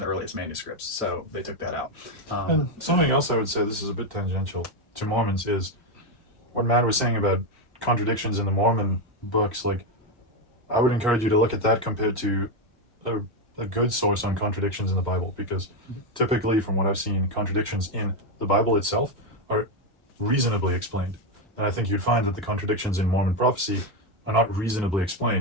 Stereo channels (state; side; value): normal; both; correlation 0.07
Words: the earliest manuscripts, so they took that out. and something else I would say, this is a bit tangential to Mormons, is what Matt was saying about contradictions in the Mormon books. Like, I would encourage you to look at that compared to a good source on contradictions in the Bible, because typically, from what I've seen, contradictions in the Bible itself are reasonably explained. And I think you'd find that the contradictions in Mormon prophecy are not reasonably